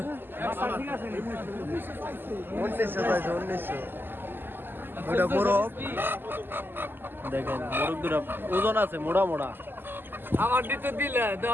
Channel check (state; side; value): late; left; 0.096 ms